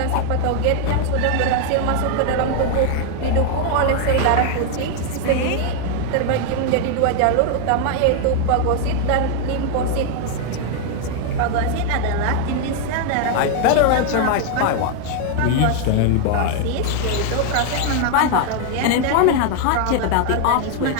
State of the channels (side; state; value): both; different; correlation 0.00